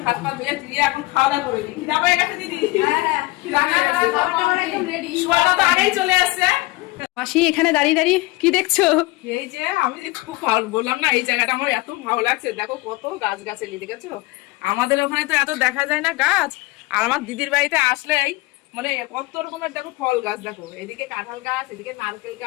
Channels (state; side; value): quieter; right; 21.3 dB